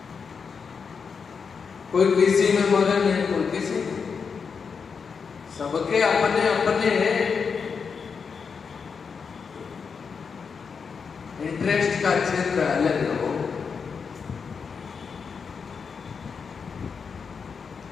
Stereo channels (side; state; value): right; quieter; 5.8 dB